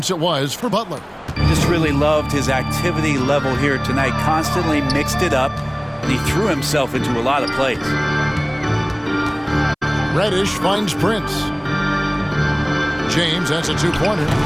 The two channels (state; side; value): identical; both; correlation 1.00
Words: it was for Butler. Just really loved his activity level here tonight. Constantly mixed it up. And he threw himself into a lot of plays. Reddish finds Prince. James, that's a 2-pointer.